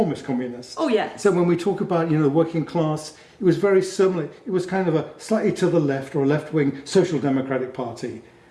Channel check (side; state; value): both; identical; correlation 1.00